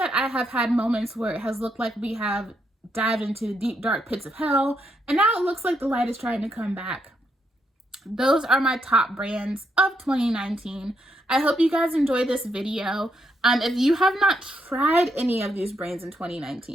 I have had moments where it has looked like we have dived into the deep, dark pits of hell, and now it looks like the light is trying to come back, those are my top brands of 2019. I hope you guys enjoyed this video. If you have not tried any of these brands in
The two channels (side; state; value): both; normal; correlation 0.78